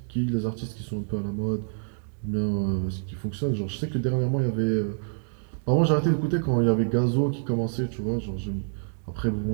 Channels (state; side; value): silent; left; digital silence